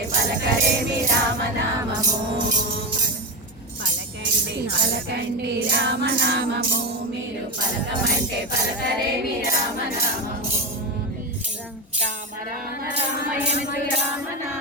పలకరేమి రామనామము. పలకండి పలకండి రామనామము, మీరు పలకమంటే పలకరేమి రామనామము. రామ రామ రామయనుచు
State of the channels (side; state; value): both; normal; correlation 0.15